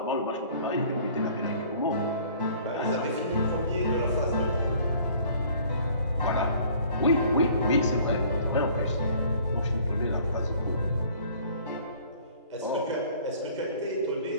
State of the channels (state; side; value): inverted; both; correlation -0.53